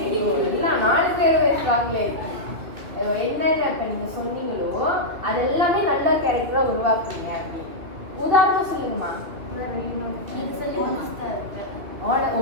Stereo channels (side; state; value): left; late; 2.7 ms